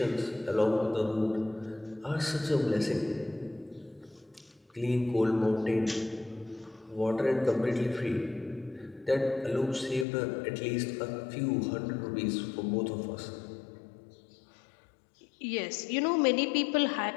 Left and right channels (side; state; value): right; drops out; at 10.1 s